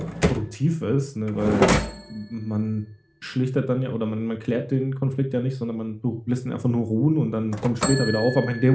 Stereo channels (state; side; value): identical; both; correlation 1.00